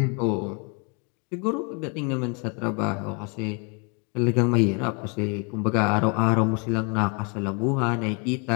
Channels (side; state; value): right; quieter; 33.7 dB